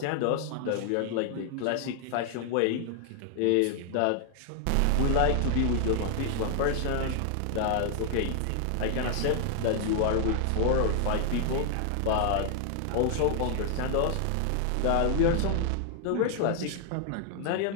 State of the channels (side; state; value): both; different; correlation 0.00